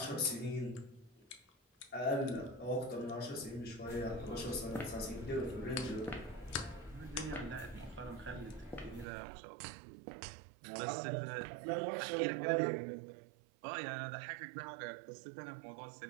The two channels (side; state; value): left; drops out; at 9.1 s